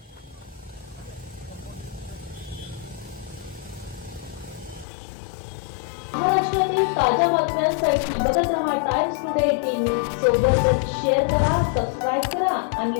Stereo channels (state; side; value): drops out; right; at 4.9 s